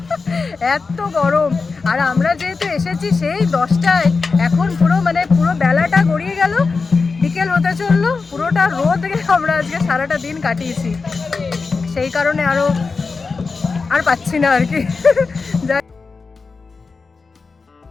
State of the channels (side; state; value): right; quieter; 4.4 dB